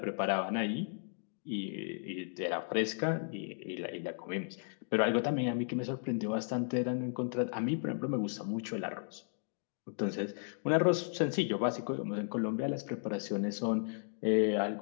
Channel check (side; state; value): right; silent; digital silence